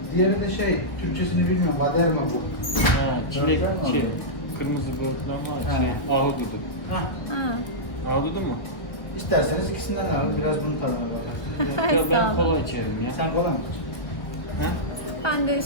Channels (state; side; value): late; right; 1.6 ms